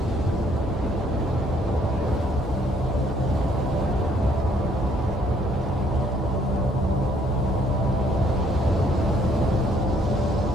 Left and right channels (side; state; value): both; normal; correlation 0.65